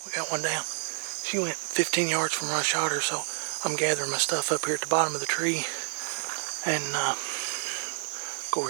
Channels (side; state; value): left; silent; digital silence